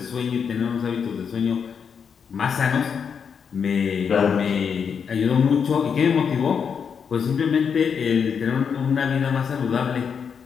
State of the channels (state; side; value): quieter; right; 6.7 dB